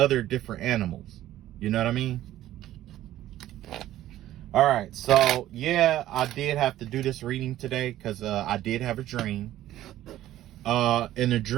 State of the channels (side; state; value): left; quieter; 13.7 dB